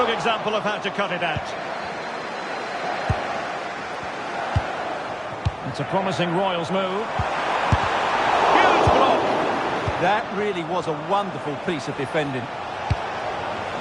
example of how to cut it out. It's a promising Royals move. Huge block. That really was a wonderful piece of defending.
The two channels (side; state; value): both; identical; correlation 1.00